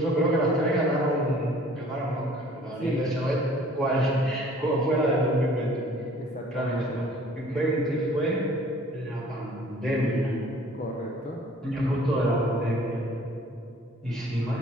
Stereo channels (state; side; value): normal; both; correlation 0.53